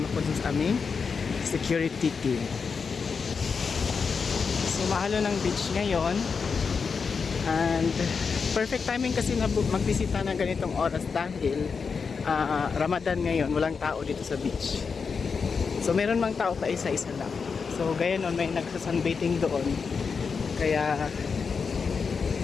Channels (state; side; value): quieter; right; 5.5 dB